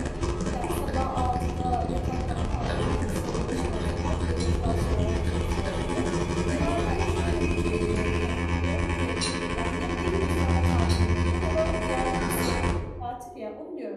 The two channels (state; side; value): identical; both; correlation 1.00